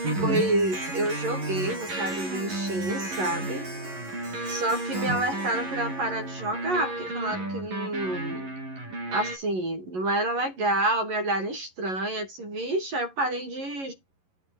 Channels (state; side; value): late; left; 11 ms